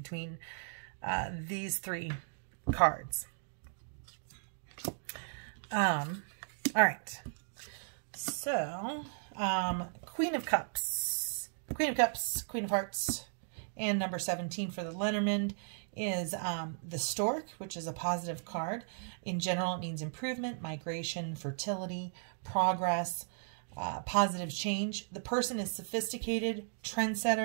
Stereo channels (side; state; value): left; silent; digital silence